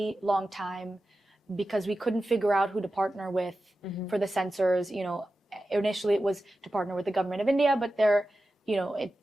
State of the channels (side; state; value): both; normal; correlation 0.93